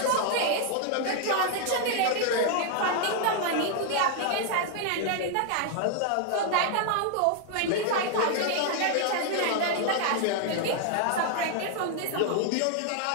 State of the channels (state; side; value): different; both; correlation 0.00